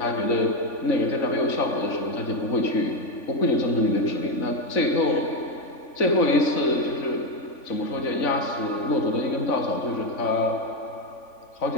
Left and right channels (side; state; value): right; late; 3.5 ms